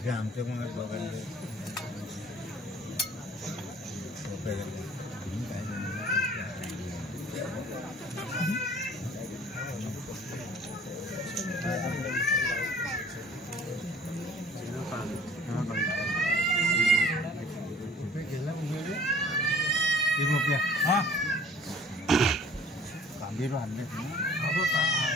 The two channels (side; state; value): both; normal; correlation 0.51